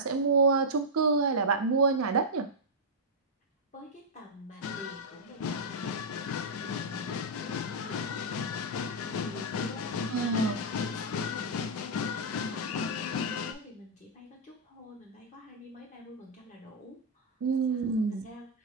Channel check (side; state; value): both; normal; correlation -0.08